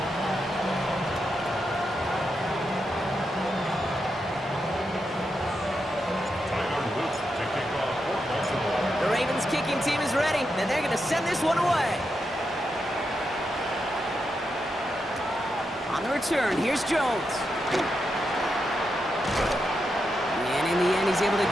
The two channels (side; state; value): both; normal; correlation 0.85